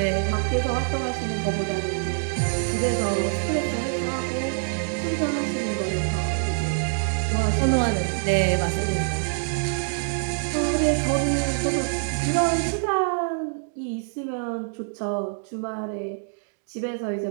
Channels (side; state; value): left; silent; digital silence